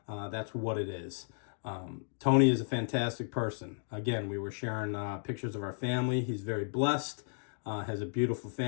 That's what it is. Tony is a fantastic person. Again, we were sharing pictures of our family. He's very blessed, has a beautiful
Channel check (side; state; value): right; silent; digital silence